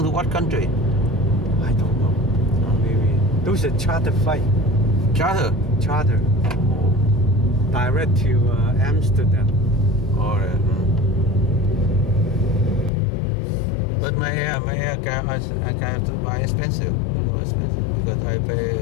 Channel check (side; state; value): right; drops out; at 12.9 s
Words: to what country? I don't know. Maybe those are charter flight. Charter. Charter. Direct to Amsterdam. All right. But my air car, I have to buy expensive. Because I